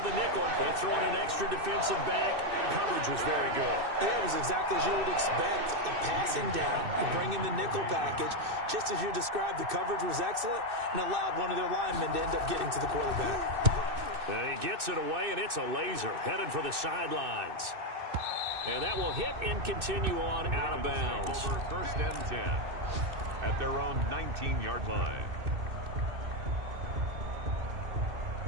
the nickel. They throw in an extra defensive back. Coverage was very good. Yeah, it was exactly as you would expect. A passing down. You bring in the nickel package. Just as you described, the coverage was excellent and allowed one of their linemen to end up getting to the quarterback. And he gets it away, and it's a laser headed for the sidelines. And that will hit and continue on out of bounds. Over 1st and 10 at their own 19-yard line.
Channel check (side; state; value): left; late; 2.6 ms